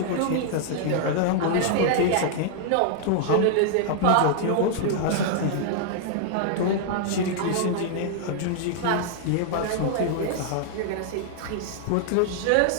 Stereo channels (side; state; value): both; different; correlation -0.01